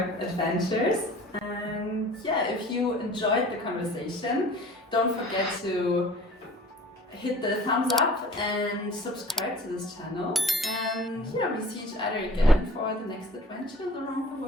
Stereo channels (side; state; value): both; normal; correlation 0.46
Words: adventures. And yeah, if you enjoyed the conversation, don't forget to hit the thumbs up and subscribe to this channel. And yeah, we see each other again for the next adventures around the